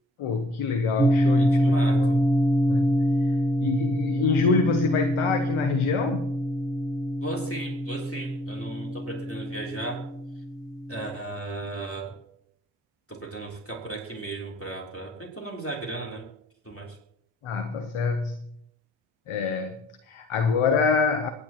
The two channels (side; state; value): both; normal; correlation 0.59